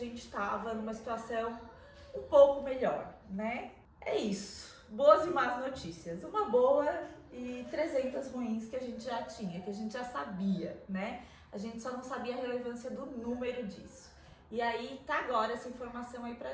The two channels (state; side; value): identical; both; correlation 1.00